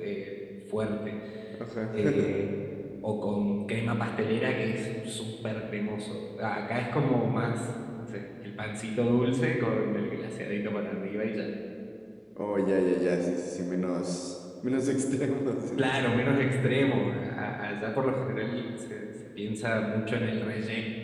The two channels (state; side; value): identical; both; correlation 1.00